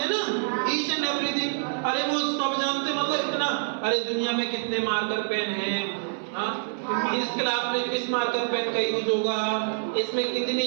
हैं ना, ईच एंड एवरीथिंग। अरे वो सब जानते मतलब इतना, अरे दुनिया में कितने मार्कर पेन हैं, इस क्लास में किस मार्कर पेन का यूज होगा, इसमें कितनी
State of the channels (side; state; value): left; silent; 58 dB below the other